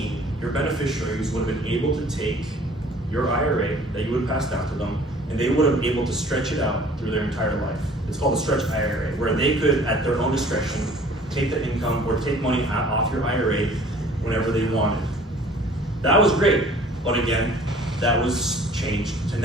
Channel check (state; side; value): normal; both; correlation 0.51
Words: your beneficiaries would have been able to take your IRA that you would have passed down to them, and they would have been able to stretch it out through their entire life. It's called a stretch IRA, where they could, at their own discretion, take the income or take money off your IRA whenever they wanted. That was great, but again, that was changed to